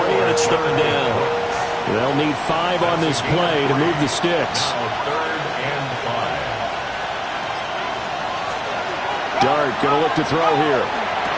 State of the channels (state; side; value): identical; both; correlation 1.00